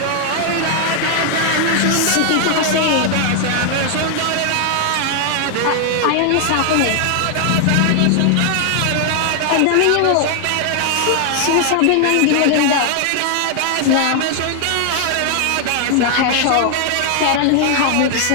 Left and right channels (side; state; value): both; different; correlation 0.00